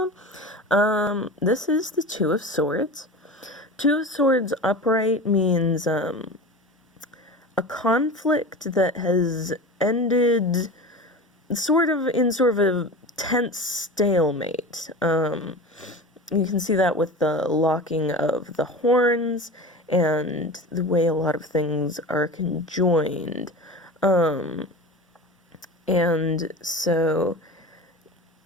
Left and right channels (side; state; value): both; normal; correlation 0.31